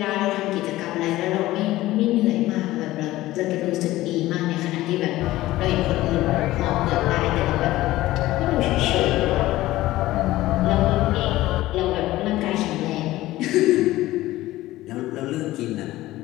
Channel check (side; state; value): right; quieter; 16.6 dB